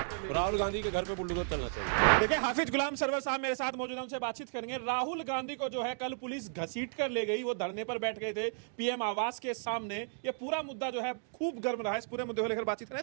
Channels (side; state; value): left; silent; digital silence